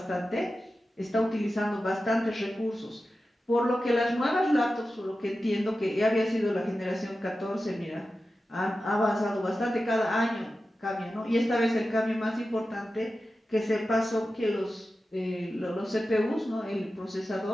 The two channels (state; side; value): normal; both; correlation 0.93